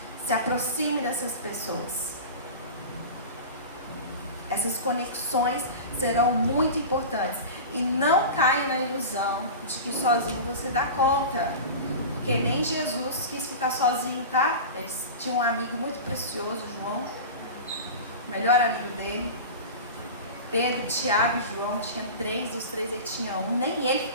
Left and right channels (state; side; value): inverted; both; correlation -0.30